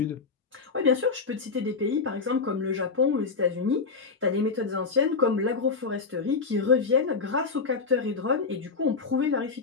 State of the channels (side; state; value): right; quieter; 4.7 dB